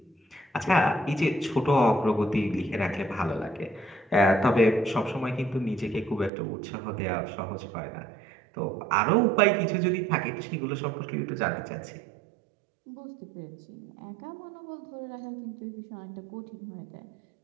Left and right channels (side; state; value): left; drops out; at 6.3 s